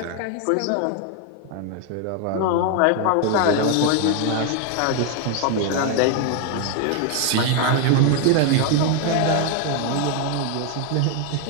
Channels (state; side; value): different; both; correlation 0.01